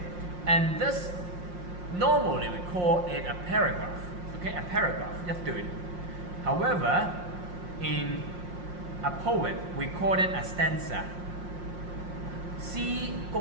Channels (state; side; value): late; left; 5.6 ms